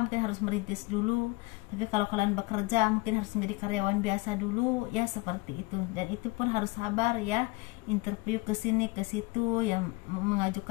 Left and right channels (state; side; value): quieter; right; 23.8 dB